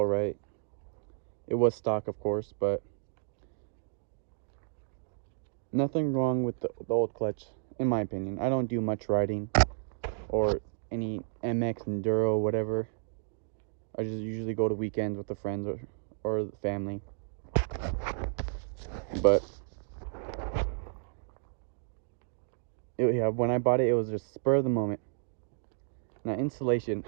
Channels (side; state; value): left; silent; digital silence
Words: right. It was stock, of course, but nothing wrong with the old clutch, in my opinion. I don't do much riding or any MX enduro, whatever. I just usually go to weekends with the friends or the family. But yeah, when I bought it, it was just spur of the moment. Now installation,